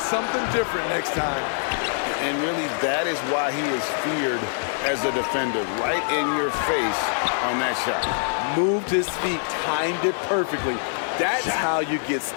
different next time. And really, that is why he is feared as a defender. Right in your face on that shot. Moved his feet, timed it perfectly. That's how you get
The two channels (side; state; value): right; silent; 62 dB below the other